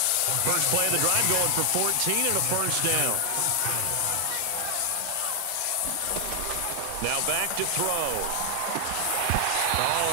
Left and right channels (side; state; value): both; different; correlation 0.00